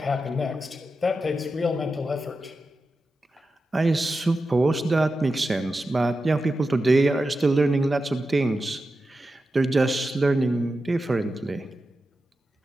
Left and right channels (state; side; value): normal; both; correlation 0.91